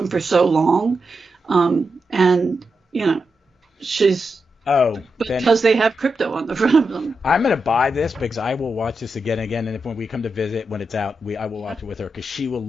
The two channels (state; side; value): normal; both; correlation 0.87